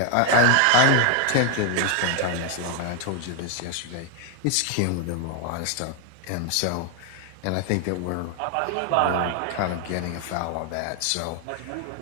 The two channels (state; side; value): different; both; correlation 0.00